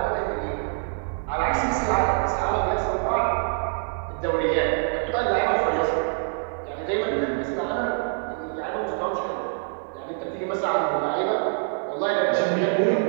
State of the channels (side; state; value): left; silent; 61 dB below the other